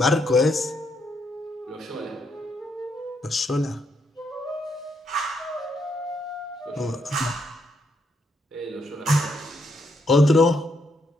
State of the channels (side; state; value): both; normal; correlation 0.76